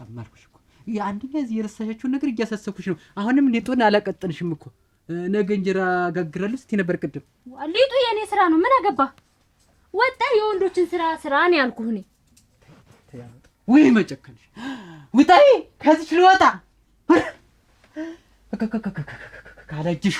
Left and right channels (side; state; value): both; identical; correlation 1.00